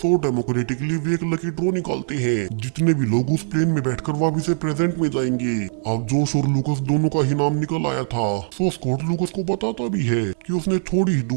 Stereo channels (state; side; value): silent; left; 64 dB below the other